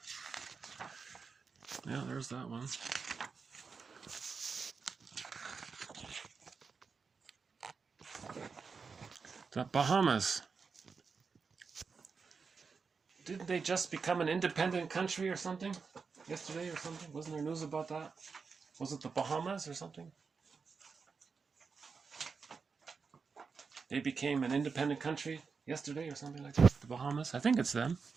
Yeah, there's that one. The Bahamas. Didn't they just become an independent country or something? Yesterday or something? Wasn't there news about that? Was it the Bahamas or something? They became an independent country yesterday or something like that? The Bahamas? I think it's them.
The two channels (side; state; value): left; quieter; 5.2 dB